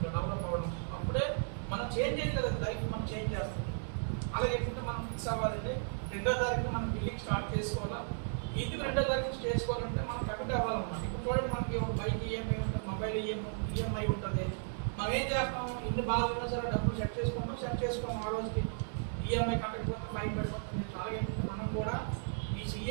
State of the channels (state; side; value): silent; left; digital silence